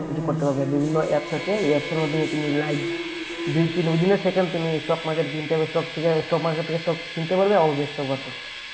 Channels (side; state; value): both; identical; correlation 1.00